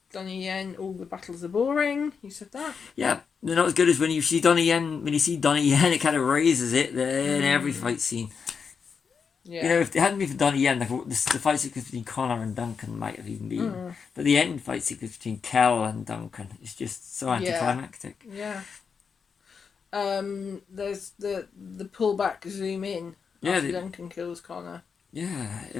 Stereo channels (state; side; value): quieter; right; 6.0 dB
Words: Donnie Yen, all the battles are boring. You said that? Yeah, they're not as good as when you see Donnie Yen. When you see Donnie Yen, it kind of raises it in every fight scene. Yeah. You know, if it hadn't been for Donnie Yen, the fight sequence between Connor and Duncan might have even been. But the end fight sequence between Kel and Duncan is just so anticlimactic. Yeah. There's the pullback zoom in. Yeah, After Duncan kills Connor. Yeah,